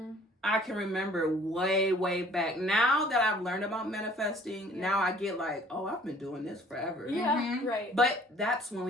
I can remember way back. Now that I've learned about manifesting, now I get like, oh, I've been doing this forever. Yeah, right. But that's when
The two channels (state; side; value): normal; both; correlation 0.55